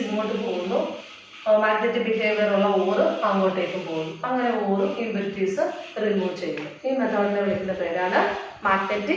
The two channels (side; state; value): both; identical; correlation 1.00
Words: ഇങ്ങോട്ട് പോകുന്നു. മാഗ്നറ്റിക് ബിഹേവിയർ ഉള്ള ഓറ് അങ്ങോട്ടേക്ക് പോകുന്നു. അങ്ങനെ ഓറും ഇമ്പിറ്റിസ് റിമൂവ് ചെയ്യുന്നു. ഈ മെത്തേഡിനെ വിളിക്കുന്ന പേരാണ്